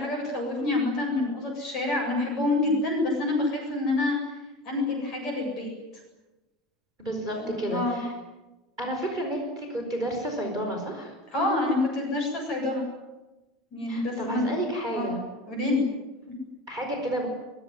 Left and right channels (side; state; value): both; normal; correlation 0.35